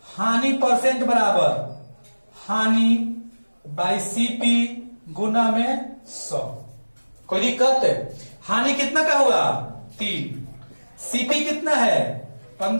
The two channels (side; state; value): both; inverted; correlation -1.00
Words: हानि परसेंट बराबर हानि बाई सीपी गुना में 100, कोई दिक्कत है। हानि कितना का होगा, 3, सीपी कितना है,